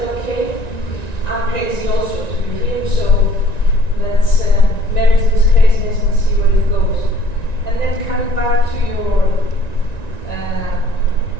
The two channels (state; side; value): late; right; 1.9 ms